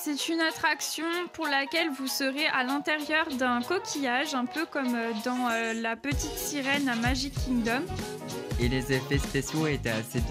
une attraction pour laquelle vous serez à l'intérieur d'un coquillage, un peu comme dans La Petite Sirène à Magic Kingdom. Et les effets spéciaux étaient assez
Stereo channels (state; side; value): identical; both; correlation 1.00